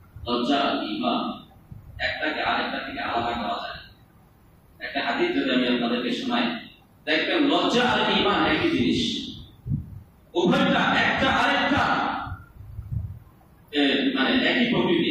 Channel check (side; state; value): both; identical; correlation 1.00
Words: লজ্জা ঈমান, একটাকে আরেকটা থেকে আলাদা করা যায়। একটা হাদিস যদি আমি আপনাদেরকে শোনাই, দেখবেন লজ্জা আর ঈমান একই জিনিস, উভয়টা একটা আরেকটা মানে একই